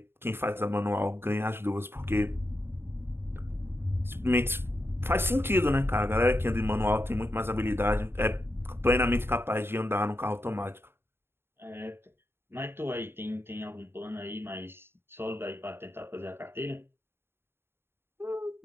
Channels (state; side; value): late; left; 0.11 ms